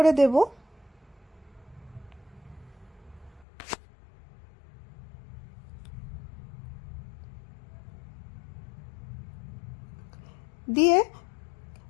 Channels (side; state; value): right; drops out; at 3.5 s